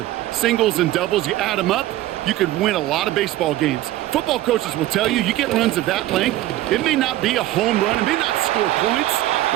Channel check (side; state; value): left; quieter; 15.4 dB